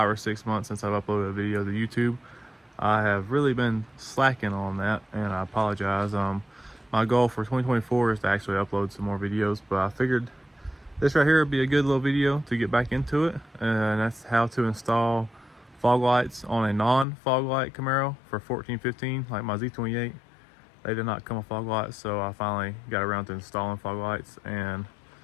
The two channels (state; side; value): drops out; right; at 17.1 s